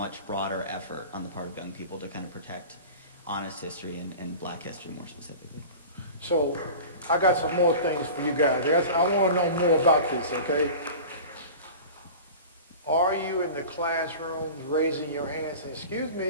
broader effort on the part of young people to kind of protect honest history and black history more specifically. So I got some more things for you guys. I want to know more about this, okay? Are you in the classrooms raising your hands saying, excuse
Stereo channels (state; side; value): inverted; both; correlation -0.36